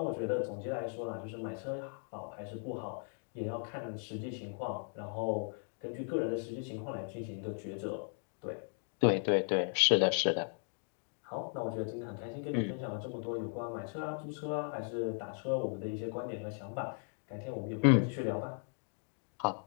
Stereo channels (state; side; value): silent; right; 53 dB below the other